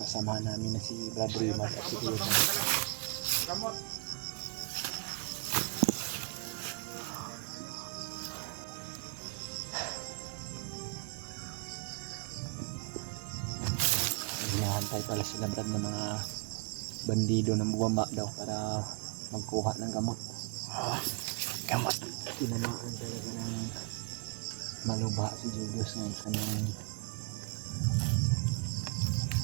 namin na si Brad Raymond at si Kuya Jun. Gamot. Hinahantay pala sila Brad ng mga bandido na bumaba daw para magkuha ng gamot. Oh, gamot. Tinamaan talaga ng maluba si Julius ngayon sa kanyang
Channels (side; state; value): left; quieter; 33.8 dB